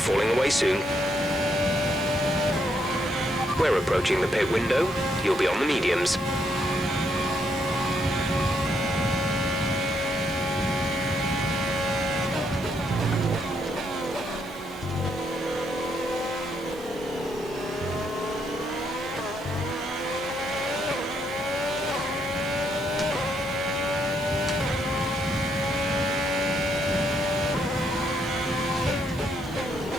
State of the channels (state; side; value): normal; both; correlation 0.75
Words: away soon. We're approaching the pit window. You'll be on the mediums.